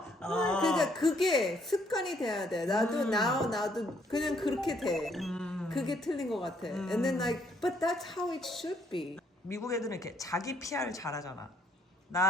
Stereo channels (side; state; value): both; normal; correlation 0.68